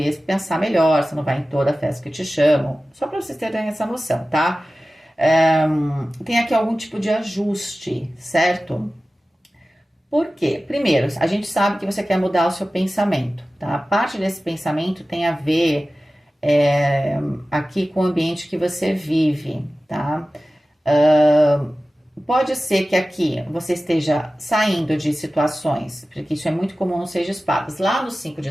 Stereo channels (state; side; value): normal; both; correlation 0.96